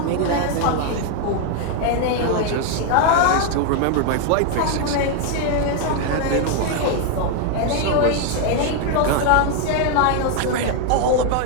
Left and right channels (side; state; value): both; different; correlation 0.00